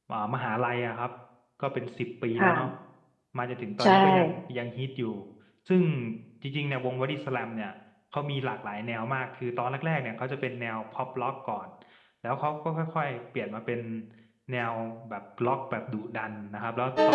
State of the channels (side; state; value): both; identical; correlation 1.00